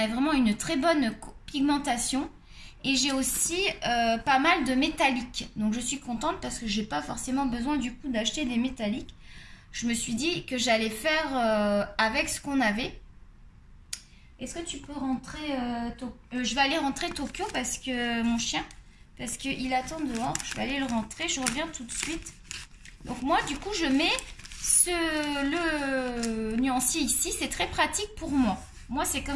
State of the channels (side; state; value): both; identical; correlation 1.00